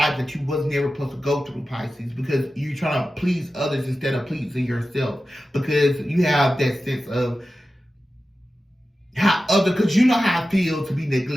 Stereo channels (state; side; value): normal; both; correlation 0.94